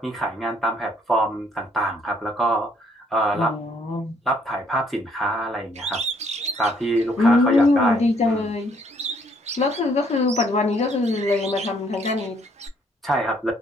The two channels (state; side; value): normal; both; correlation 0.66